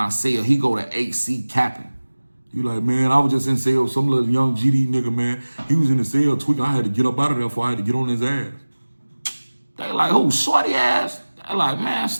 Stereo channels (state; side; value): inverted; both; correlation -1.00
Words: cell, he go to HC capping. You like, man, I was just in cell. Some little young GD nigga, man. He was in the cell tweaking. I had to get up out of there before I had to get on his ass. They like, who, shorty ass? They like, man,